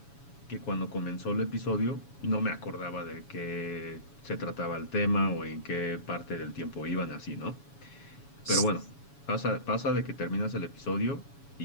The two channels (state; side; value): late; right; 7.1 ms